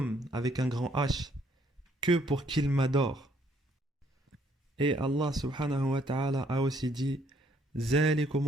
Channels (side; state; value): both; normal; correlation 0.67